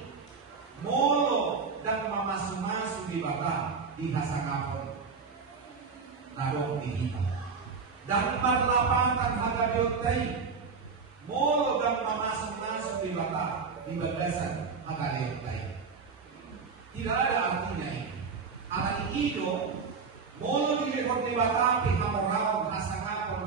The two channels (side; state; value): left; quieter; 5.1 dB